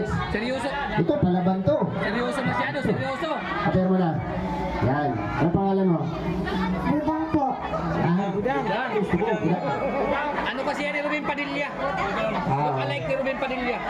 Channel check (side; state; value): both; identical; correlation 1.00